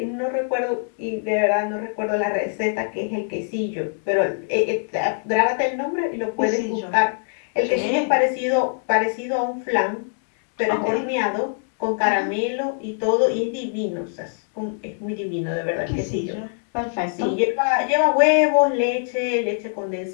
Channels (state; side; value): silent; right; digital silence